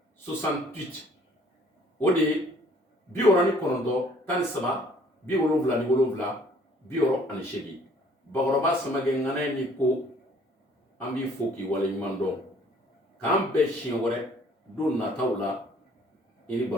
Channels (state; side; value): normal; both; correlation 0.58